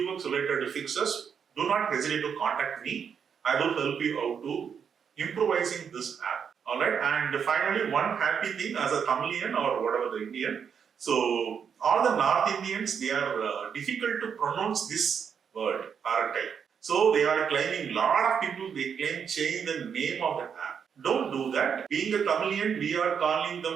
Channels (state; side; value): quieter; left; 7.1 dB